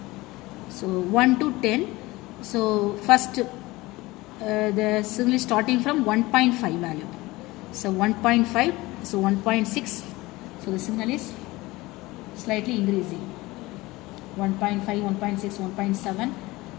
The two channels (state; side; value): quieter; right; 20.4 dB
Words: So 1 to 10. So first the signal is starting from 1.5 value. So 1.5, so 1.6. So the signal is slightly increasing. 1.5, 1.6, 1.7.